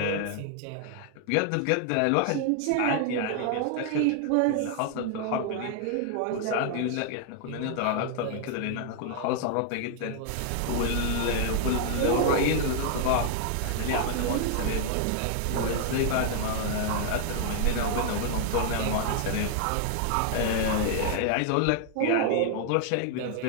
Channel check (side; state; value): both; different; correlation 0.00